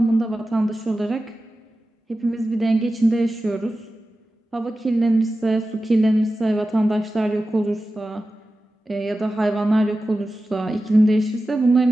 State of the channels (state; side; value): normal; both; correlation 0.94